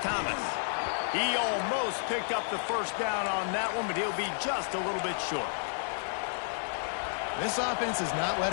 He almost picked up the first down on that one, but he'll be just a little bit short. This offense is not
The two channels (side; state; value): right; silent; digital silence